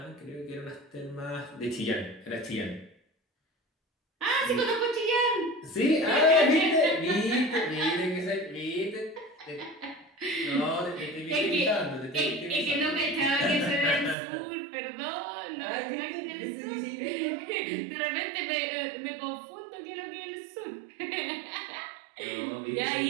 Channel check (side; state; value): left; drops out; at 14.2 s